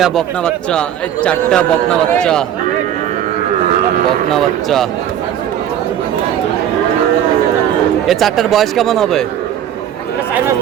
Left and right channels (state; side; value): quieter; left; 10.4 dB